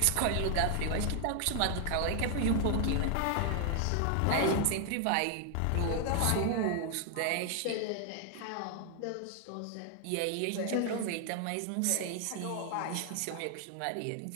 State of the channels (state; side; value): different; both; correlation 0.00